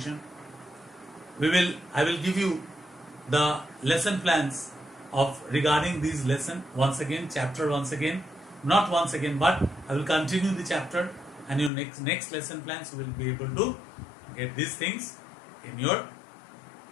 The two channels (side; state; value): right; drops out; at 11.7 s